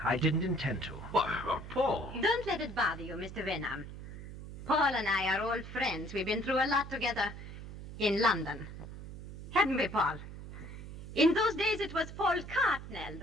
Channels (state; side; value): noise; right; hum, 11 dB below the sound